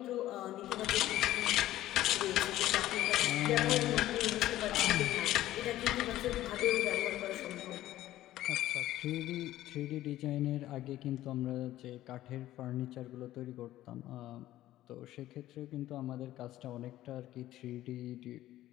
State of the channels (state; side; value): quieter; right; 14.5 dB